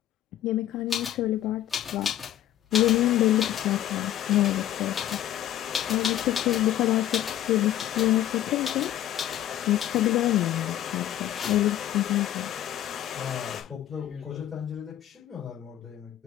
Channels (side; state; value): right; quieter; 12.2 dB